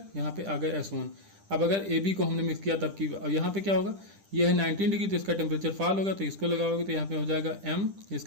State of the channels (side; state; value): left; late; 10 ms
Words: यहाँ पे आ गया S1। अब अगर ए बी को हमने मिक्स किया तब की, अब यहाँ पे क्या होगा, ये है 19 डिग्री, तो इसका टेम्परेचर फॉल होगा, तो इसको लगाओगे तो यहाँ पे हो जाएगा M,